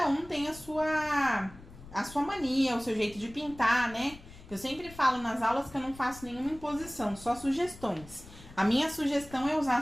um tem a sua mania, o seu jeito de pintar, né? Eu sempre falo nas aulas que eu não faço nenhuma imposição, só sugestões. A minha sugestão é usar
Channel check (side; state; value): left; noise; rumble, 18 dB below the sound